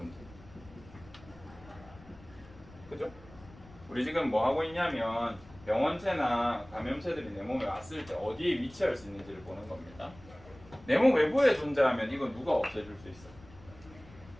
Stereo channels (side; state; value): left; noise; rumble, 21 dB below the sound